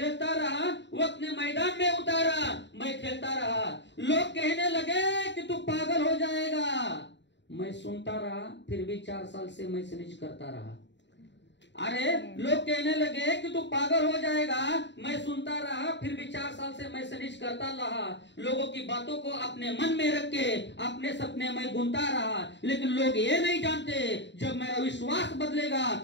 रहा, वक्त ने मैदान में उतारा, मैं खेलता रहा. लोग कहने लगे कि तू पागल हो जाएगा, मैं सुनता रहा, फिर भी 4 साल से मैं सनेज करता रहा. अरे लोग कहने लगे कि तू पागल हो जाएगा, मैं सुनता रहा, फिर भी 4 साल से मैं सनेज करता रहा. लोगों की बातों को अपने मन में रख के अपने सपने में बुनता रहा. लेकिन लोग ये नहीं जानते, जब मेरा विश्वास बदलेगा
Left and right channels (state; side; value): late; right; 0.52 ms